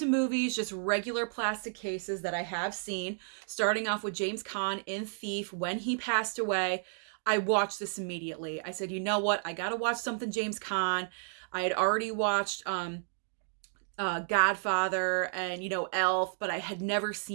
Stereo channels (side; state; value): left; silent; digital silence